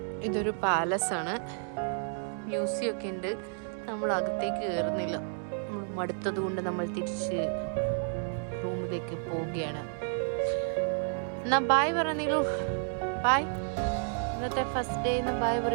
ഇതൊരു പാലസ് ആണ് മ്യൂസിയം ഒക്കെ ഉണ്ട് നമ്മൾ അകത്തേക്ക് കയറുന്നില്ല നമ്മൾ മടുത്തത് കൊണ്ട് നമ്മൾ തിരിച്ച് റൂമിലേക്ക് പോവുകയാണ് എന്നാ ബായ് പറഞ്ഞീലു ബായ് ഇന്നത്തെ ഫസ്റ്റ് ഡേ എന്ന് ബായ്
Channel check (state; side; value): silent; left; 57 dB below the other